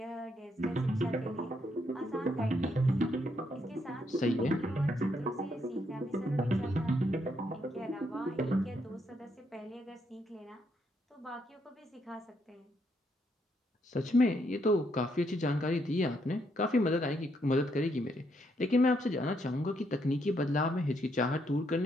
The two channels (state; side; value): normal; both; correlation 0.75